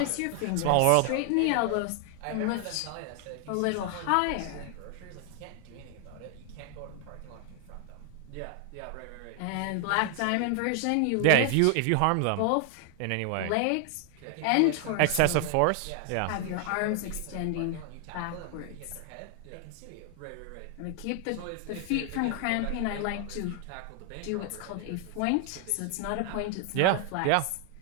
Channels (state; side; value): different; both; correlation 0.00